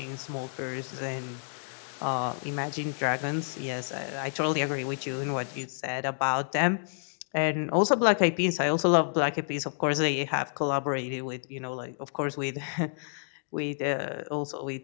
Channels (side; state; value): right; silent; digital silence